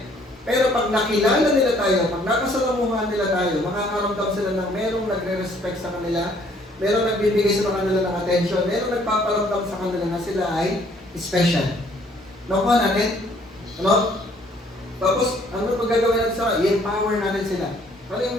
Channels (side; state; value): both; normal; correlation 0.62